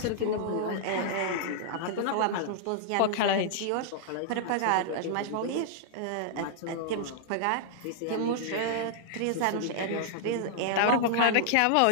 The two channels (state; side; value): different; both; correlation -0.01